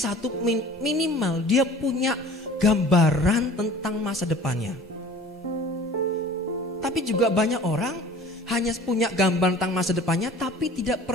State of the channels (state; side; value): normal; both; correlation 0.46